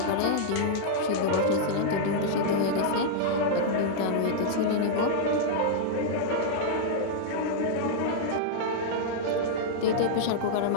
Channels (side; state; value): both; different; correlation -0.02